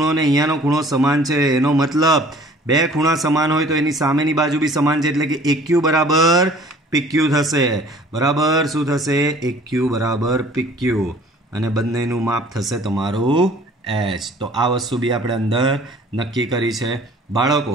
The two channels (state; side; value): normal; both; correlation 0.51